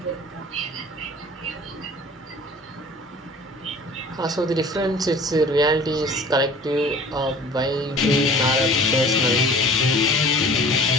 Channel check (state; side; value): normal; both; correlation 0.46